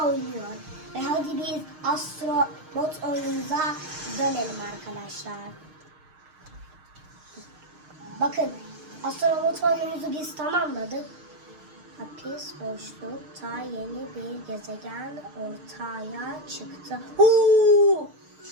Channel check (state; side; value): late; left; 6.5 ms